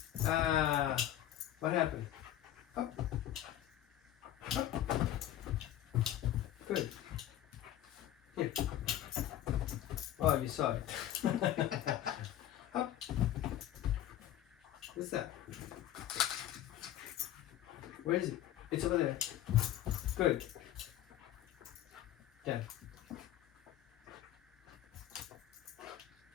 What happened? Up. Up. Good. Here. Oh, you saw it. Up. What's that? Where is it? It's over there. Good. Down.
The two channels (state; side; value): quieter; right; 12.3 dB